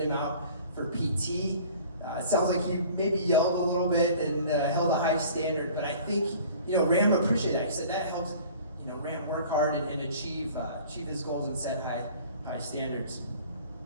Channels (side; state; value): both; inverted; correlation -0.47